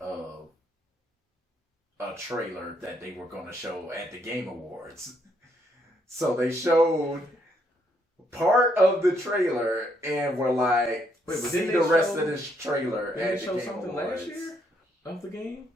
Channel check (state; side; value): normal; both; correlation 0.73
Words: a trailer that they were going to show at the Game Awards. So they showed part of the trailer and were like, see the rest of this trailer at the Game Awards. Did they show something last year of the game?